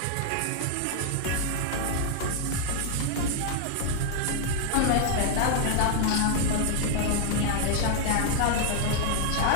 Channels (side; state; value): both; different; correlation 0.00